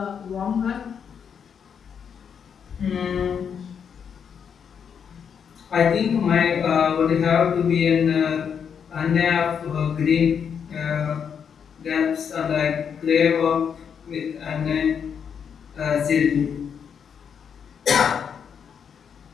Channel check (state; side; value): quieter; right; 7.3 dB